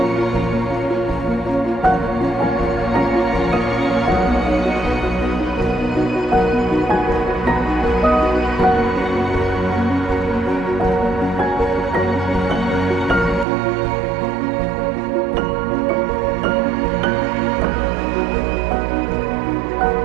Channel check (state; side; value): drops out; left; at 13.5 s